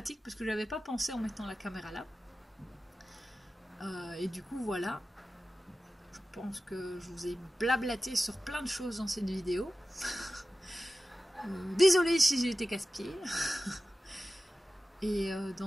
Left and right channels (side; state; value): both; normal; correlation 0.94